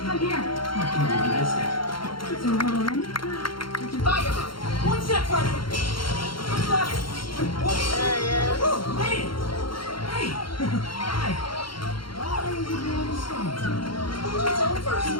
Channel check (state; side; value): late; right; 0.73 ms